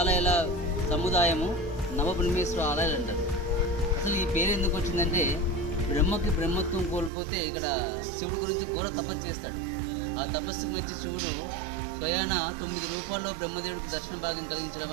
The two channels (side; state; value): left; drops out; at 7.1 s